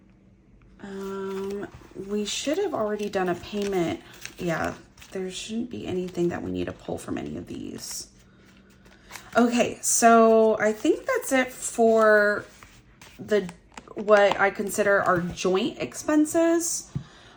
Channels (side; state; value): both; identical; correlation 1.00